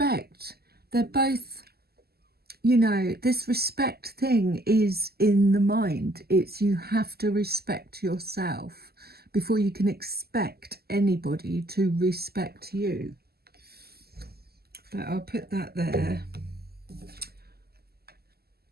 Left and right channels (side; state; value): left; late; 0.46 ms